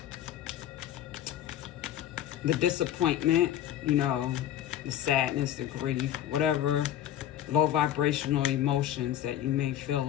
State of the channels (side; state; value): right; quieter; 11.7 dB